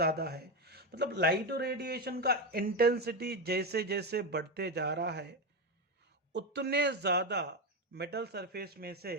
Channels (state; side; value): normal; both; correlation 0.13